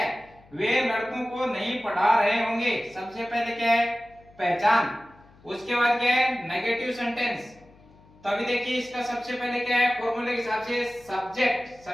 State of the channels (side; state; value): left; noise; hum, 27 dB below the sound